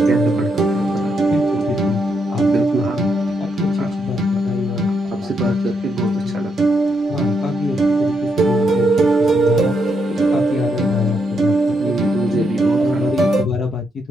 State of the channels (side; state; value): both; normal; correlation 0.79